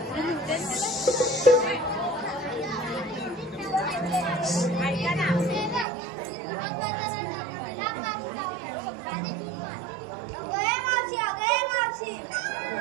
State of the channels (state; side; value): drops out; left; at 5.9 s